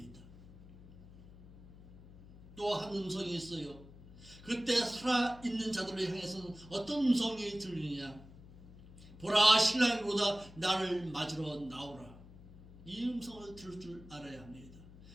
또 한 음성이 있어요. 그때 살아있는 자들을 향해서는 어떤 음성이 들리느냐? 보라 신랑이 오다 나를 맞으러 나오라. 이 음성을 들을 줄 알아야 합니다.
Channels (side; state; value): left; noise; hum, 19 dB below the sound